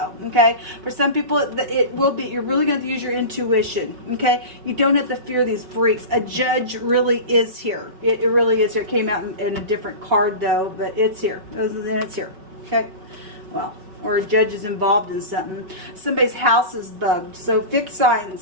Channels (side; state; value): left; late; 5.3 ms